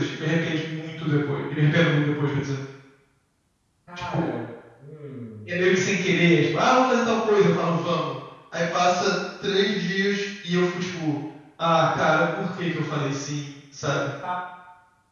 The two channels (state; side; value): identical; both; correlation 1.00